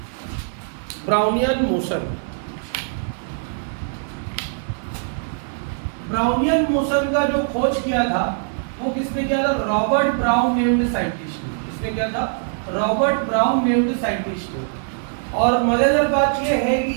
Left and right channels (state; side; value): silent; left; digital silence